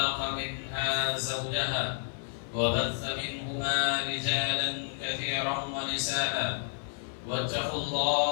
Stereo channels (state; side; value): silent; right; digital silence